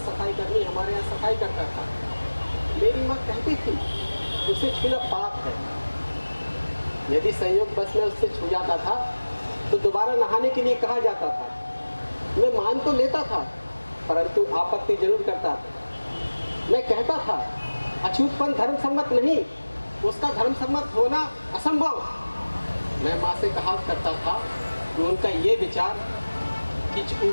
सफाई कर्मी हमारे यहाँ सफाई करता था। मेरी माँ कहती थी उसे छूना पाप है। यदि संयोग बस में उससे छू जाता था तो दोबारा नहाने के लिए कहा जाता था। मैं मान तो लेता था, परंतु आपत्ति जरूर करता था। मैं कहता था अछूतपन धर्म सम्मत नहीं, उसका धर्म सम्मत होना असंभव। मैं माँ से कहा करता था कि उनका ये विचार कि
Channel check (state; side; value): inverted; both; correlation -1.00